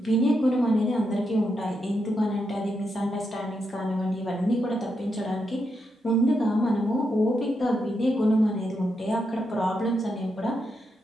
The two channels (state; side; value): normal; both; correlation 0.83